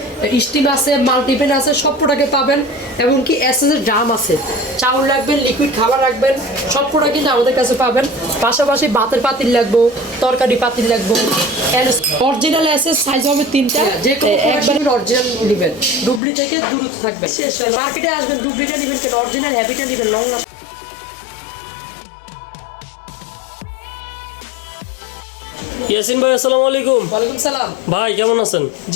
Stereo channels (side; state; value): right; drops out; at 16.2 s